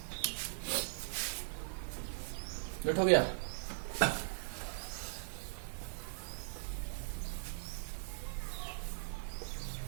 नोट हो गया।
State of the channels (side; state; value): left; silent; digital silence